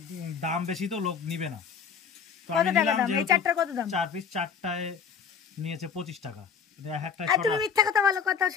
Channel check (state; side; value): quieter; right; 6.6 dB